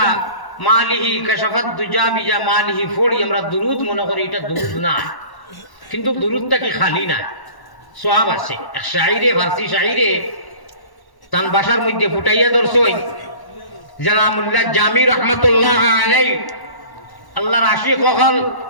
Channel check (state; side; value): late; right; 1.1 ms